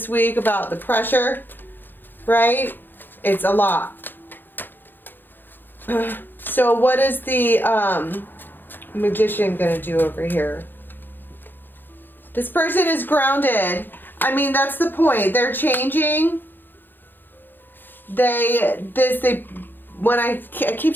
week about the pressure, right? It's a lot. So what is the Magician gonna do over here? This person is grounded. I mean, that's the point. They're changing. When I keep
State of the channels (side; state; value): right; late; 0.094 ms